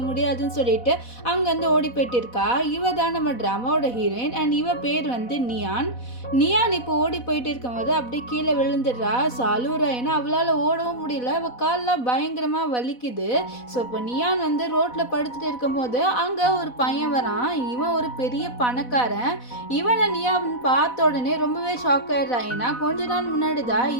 முடியாதுன்னு சொல்லிட்டு அங்கேருந்து ஓடி போயிட்டு இருக்கா. இவ தான் நம்ம ட்ராமாவோட ஹீரோயின். அண்ட் இவ பேர் வந்து நியான் இப்போ ஓடி போயிட்டு இருக்கும்போது அப்படியே கீழே விழுந்துடுறா. ஸோ அழுவுறா. ஏன்னா அவளால் ஓடவும் முடியல. அவள் கால்லாம் பயங்கரமாக வலிக்குது. ஸோ இப்போ நியான் வந்து ரோட்டில் படுத்துட்டு இருக்கும்போது அங்கே ஒரு பையன் வரான். இவன் ஒரு பெரிய பணக்காரன். இவனை நியான் பார்த்த உடனே ரொம்பவே ஷாக் ஆயிடுறான். ஏன்னா கொஞ்ச நாள் முன்னாடி தான்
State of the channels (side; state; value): right; late; 4.1 ms